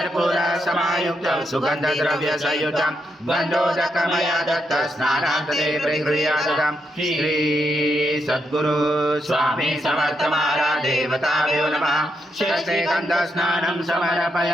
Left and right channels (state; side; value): normal; both; correlation 0.81